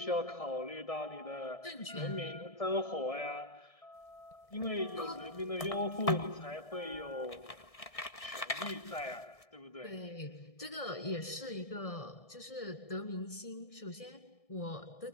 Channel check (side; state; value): right; late; 1.6 ms